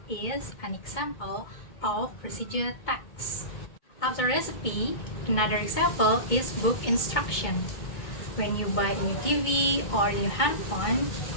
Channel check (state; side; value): late; right; 2.2 ms